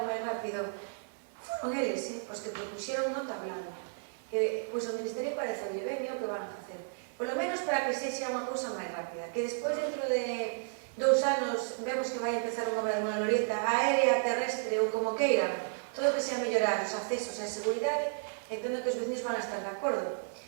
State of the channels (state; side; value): silent; left; 56 dB below the other